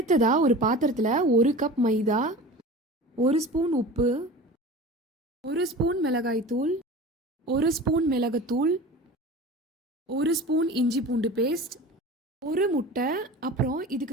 ஒரு பாத்திரத்துல 1 கப் மைதா, 1 ஸ்பூன் உப்பு, 1 ஸ்பூன் மிளகாய் தூள், 1 ஸ்பூன் மிளகுத்தூள், 1 ஸ்பூன் இஞ்சி பூண்டு பேஸ்ட், 1 முட்டை, அப்புறம்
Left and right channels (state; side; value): normal; both; correlation 0.36